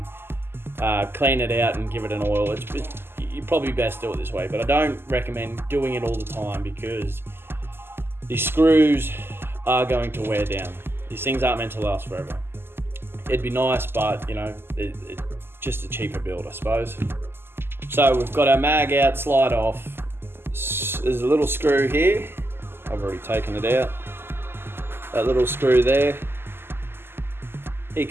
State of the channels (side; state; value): left; late; 0.11 ms